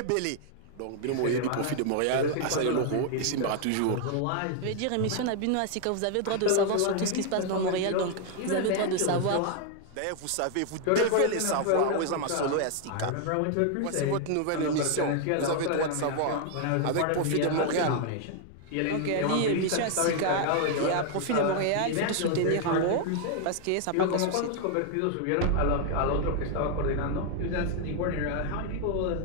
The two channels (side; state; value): both; different; correlation 0.00